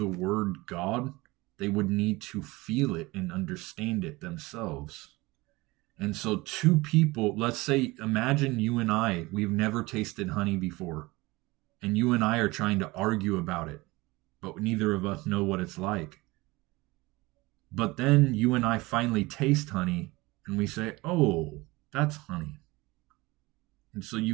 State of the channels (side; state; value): left; quieter; 22.0 dB